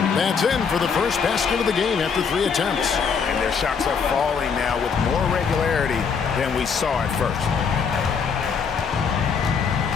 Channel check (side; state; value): right; quieter; 6.1 dB